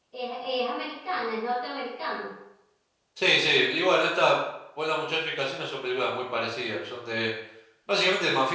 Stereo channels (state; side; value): identical; both; correlation 1.00